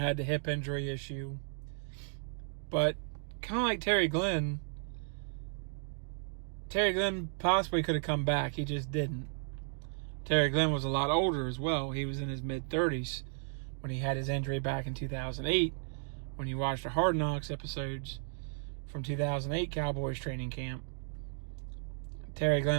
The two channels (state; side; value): silent; left; 55 dB below the other